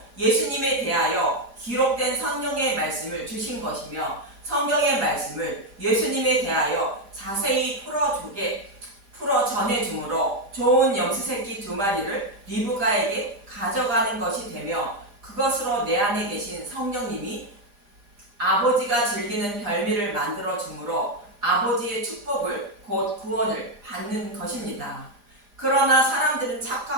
예수님에 대하여 기록된 성경의 말씀을 주신 것이며, 성경의 말씀을 예수님에 대하여 자세히 풀어 전해주므로 좋은 염소 새끼 두 마리를 리브가에게 가져가는 것이 되며, 그것으로 내 안에 계신 성령님이 아버지가 즐기는 별미를 만들어 주므로 아버지의 축복을 곧 구원을 받는 것입니다. 그러나 사람들은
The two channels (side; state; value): left; late; 4.9 ms